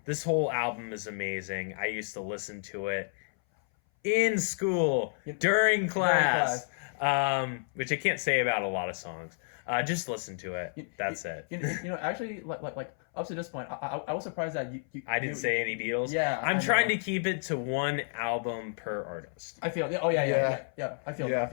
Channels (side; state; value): right; silent; 57 dB below the other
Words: This whole album is amazing. I used to listen to it in school, during class. Which I can't say about a lot of songs. Just listen to it. That's it. Actually, like up to this point, I was surprised that you I didn't say any Beatles. Yeah, I'm trying to keep it to 1 album per artist. I feel. Oh yeah. I feel that.